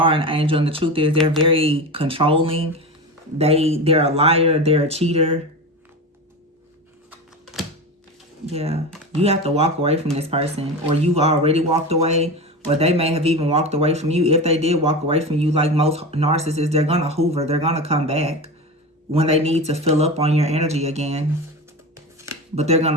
an angel, and the truth is they're very controlling. They're a liar, they're a cheater. Yeah, you have to walk away from this person, or you've already walked away, or they may have even walked away from you. If they did walk away from you, like most narcissists, they're gonna hoover, they're gonna come back when they need to fill up on your energy again. But they're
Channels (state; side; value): normal; both; correlation 0.26